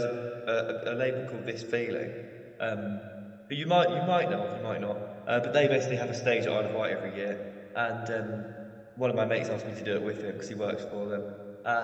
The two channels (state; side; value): identical; both; correlation 1.00